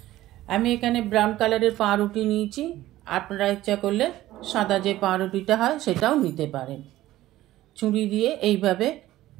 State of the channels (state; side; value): quieter; left; 15.3 dB